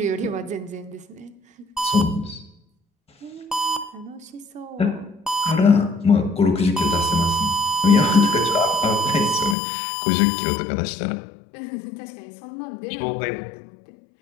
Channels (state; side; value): drops out; right; at 9.6 s